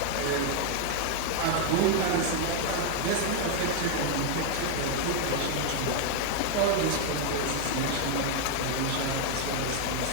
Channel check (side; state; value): both; different; correlation 0.00